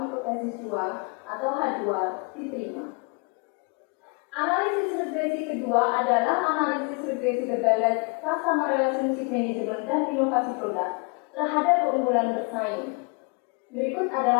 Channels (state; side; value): quieter; right; 33.5 dB